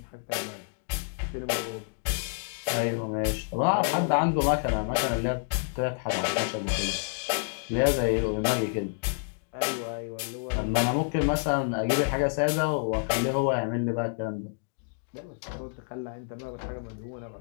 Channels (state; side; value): silent; right; digital silence